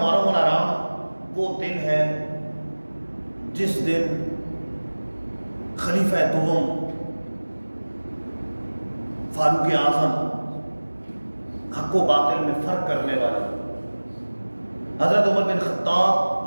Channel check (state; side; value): inverted; both; correlation -1.00